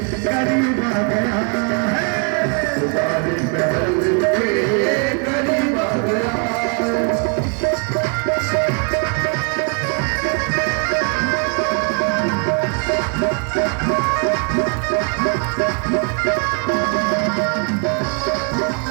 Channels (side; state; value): left; quieter; 38.1 dB